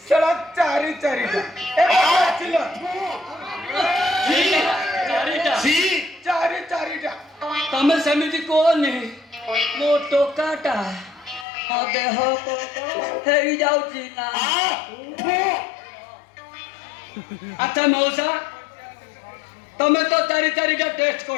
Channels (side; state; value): right; drops out; at 11.5 s